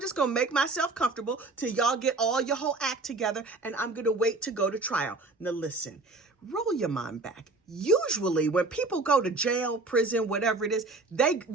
just going to make myself comfortable till y'all get all your whole act together, and I'm going to wait to go to trial. Now listen, roll your mind back. Usually when people go to jail, prison, whatever it is, they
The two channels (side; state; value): left; quieter; 3.4 dB